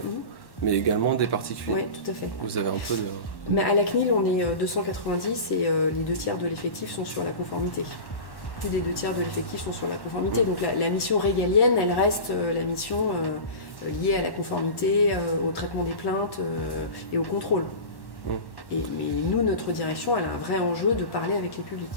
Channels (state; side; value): late; right; 1.1 ms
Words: mais également des particuliers. Oui, tout à fait. Vous avez un peu de... Mais à la CNIL, on est 290 et les 2/3 de l'effectif sont sur la conformité. Plus des 2/3 de l'effectif sont sur la conformité. Donc la mission régalienne, elle reste la mission liée à la conformité, au traitement des plaintes et au contrôle. Mais nous, notre direction, elle a un vrai enjeu de parler avec les publics.